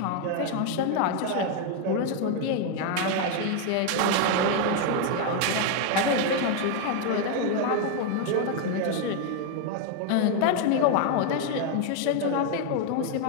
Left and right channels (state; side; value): different; both; correlation 0.01